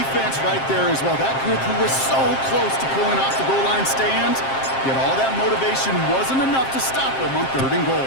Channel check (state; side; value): late; right; 7.5 ms